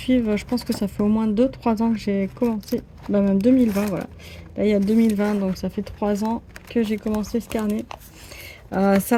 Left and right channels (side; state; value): both; identical; correlation 1.00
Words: je pense que ça fait au moins 2-3 ans que j'ai commencé, bah même 2020, voilà. Là, il y a 2020, donc ça fait 3 ans que j'ai commencé ce carnet. Ça,